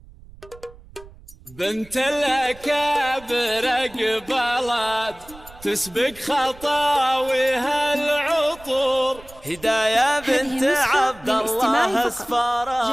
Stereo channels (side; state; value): right; noise; rumble, 22 dB below the sound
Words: بنت الأكابر قبلت تسبق خطاويها العطور، هداية بنت عبد الله